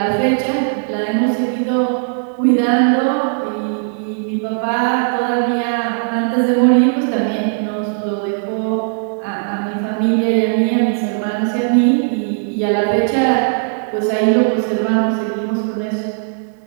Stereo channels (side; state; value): left; silent; 59 dB below the other